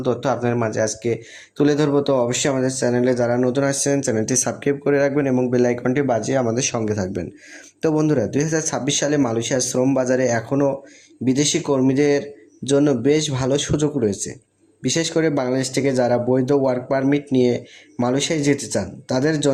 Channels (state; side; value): identical; both; correlation 1.00